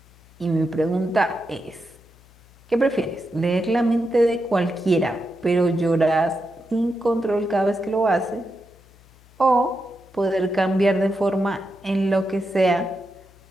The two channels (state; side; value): noise; left; hum, 27 dB below the sound